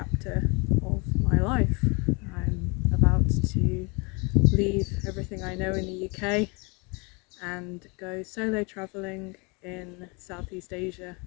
of my life. I'm about to leave everything I know in the UK and go solo travelling in Southeast Asia.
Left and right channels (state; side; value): quieter; right; 30.2 dB